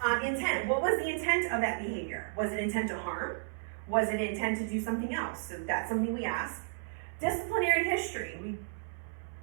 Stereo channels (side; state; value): left; silent; 56 dB below the other